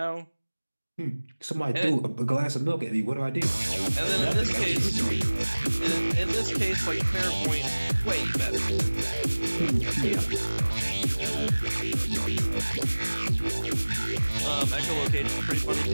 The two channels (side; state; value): both; inverted; correlation -1.00